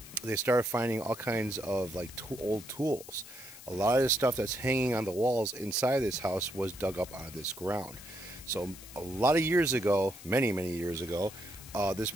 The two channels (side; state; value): left; noise; hiss, 16 dB below the sound